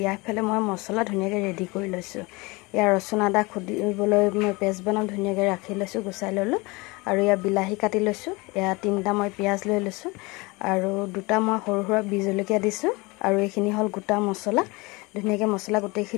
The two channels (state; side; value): quieter; right; 25.1 dB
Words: ইয়াৰফালে মই মছলা ধুনীয়াকৈ ৰেডি কৰি লৈছোঁ। এয়া ৰচুন আদা খুন্দিবলৈ মই পেষ্ট বনাম ধুনীয়াকৈ ৰাখি লৈছোঁ, গুচাই ল'লোঁ আৰু এয়া বিলাহী কাটি লৈছোঁ। এয়া 3টা মই পিঁয়াজ লৈ লৈছোঁ আৰু 2টা মই সৰু সৰু বি জলকীয়া দিছোঁ আৰু এইখিনি হ'ল গোটা মছলা। ধুনীয়াকৈ মছলা